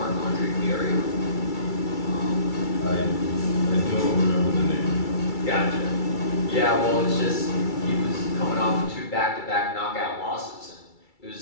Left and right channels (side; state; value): right; late; 2.3 ms